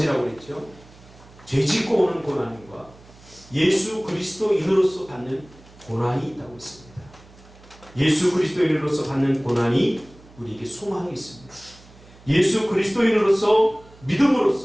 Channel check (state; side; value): noise; right; hum, 24 dB below the sound